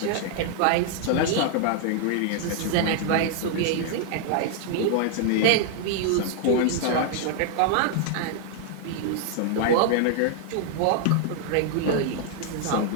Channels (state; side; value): different; both; correlation 0.00